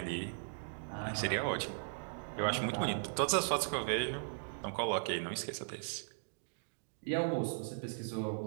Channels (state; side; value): silent; left; digital silence